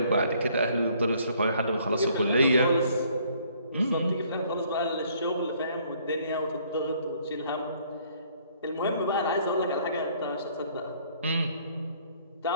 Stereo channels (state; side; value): inverted; both; correlation -0.62